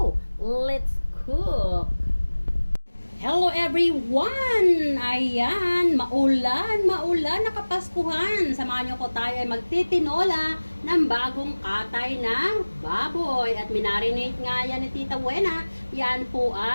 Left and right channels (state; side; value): inverted; both; correlation -1.00